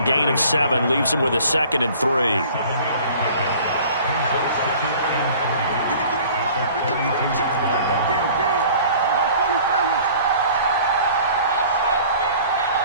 Gain of 7 leaves them with a 2nd and 3.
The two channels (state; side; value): inverted; both; correlation -0.48